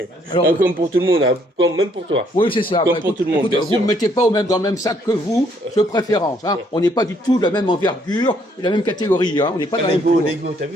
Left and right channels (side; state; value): both; normal; correlation 0.67